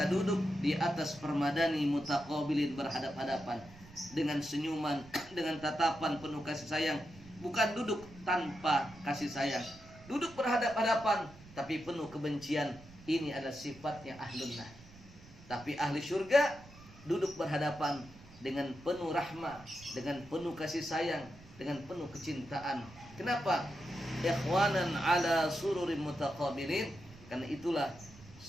duduk di atas permadani mutaqabilin, berhadap-hadapan dengan senyuman, dengan tatapan penuh kasih sayang. Bukan duduk tanpa kasih sayang, duduk berhadap-hadapan tapi penuh kebencian. Ini adalah sifatnya ahlun nar. Tapi ahli surga duduk berhadapan dengan penuh rahmah, dengan penuh kasih sayang, dengan penuh kecintaan. Kenapa? Ikhwanan ala sururin mutaqabilin, karena itulah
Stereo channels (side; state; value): right; noise; rumble, 20 dB below the sound